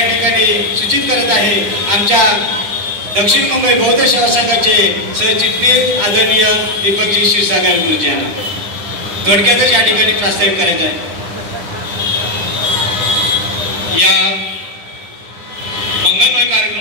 सूचित करत आहे आमच्या दक्षिण मुंबई बौद्ध सेवा संघाचे सरचिटणीस आदरणीय दीपकजी क्षीरसागर गुरुजी यांना थोडक्यातच या ठिकाणी प्रास्ताविक करायचं आहे। या मंगलमय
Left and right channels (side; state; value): left; late; 9.9 ms